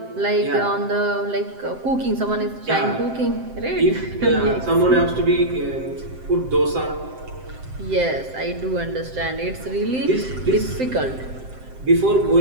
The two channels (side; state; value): left; late; 7.7 ms